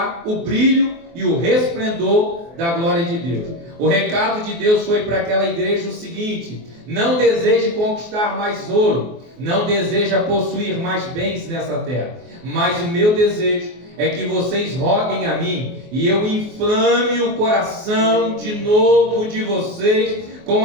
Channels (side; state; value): left; late; 24 ms